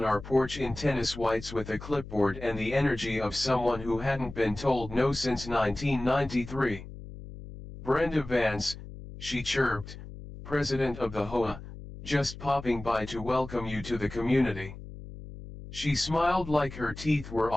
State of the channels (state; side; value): noise; left; hum, 13 dB below the sound